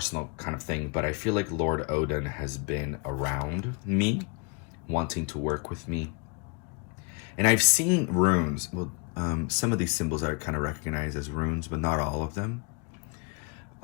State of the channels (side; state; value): right; quieter; 33.3 dB